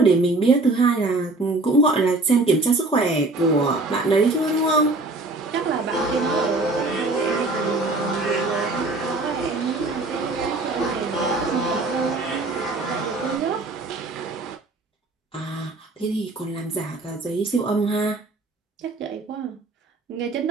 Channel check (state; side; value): quieter; left; 3.1 dB